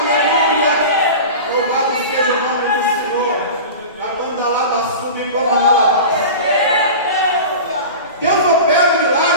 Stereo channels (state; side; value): inverted; both; correlation -0.32